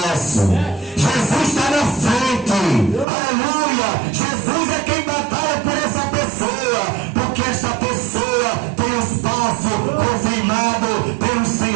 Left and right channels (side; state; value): left; drops out; at 3.1 s